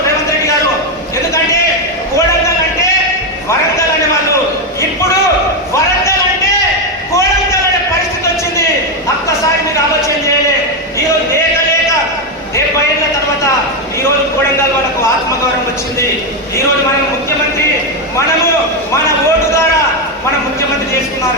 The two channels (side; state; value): both; normal; correlation 0.07